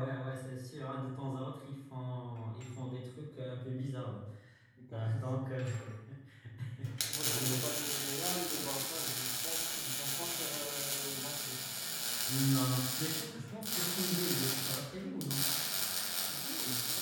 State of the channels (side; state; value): both; identical; correlation 1.00